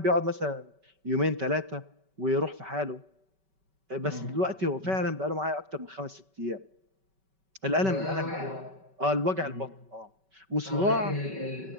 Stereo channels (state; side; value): late; left; 5.2 ms